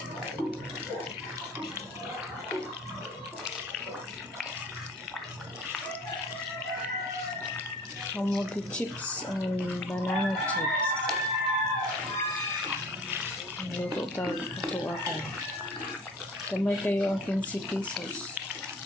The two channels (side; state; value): both; normal; correlation 0.45